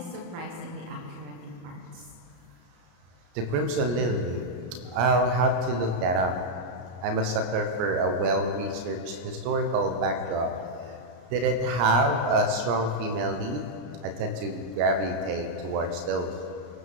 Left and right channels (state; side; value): late; left; 34 ms